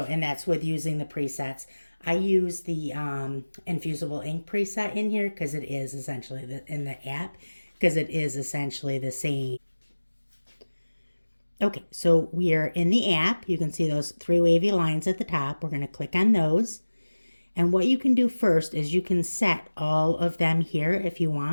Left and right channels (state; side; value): inverted; both; correlation -1.00